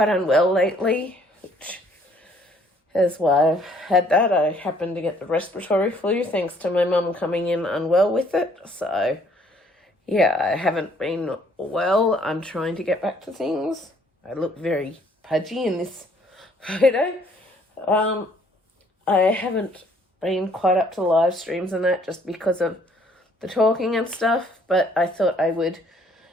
unwell lately, which is why I've had that. I happened to get the respiratory flu thanks to my mum coming in unwell with it. So yeah, I haven't been well. I'm trying to get back to things. I look very pudgy in this photo. I haven't been quite up to the live streams and that just because of the talking and stuff, but I thought I would,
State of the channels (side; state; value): both; normal; correlation 0.62